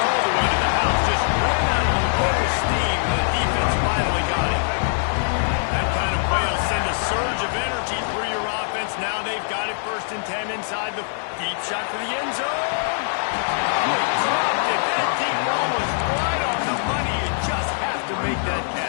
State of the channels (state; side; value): silent; right; digital silence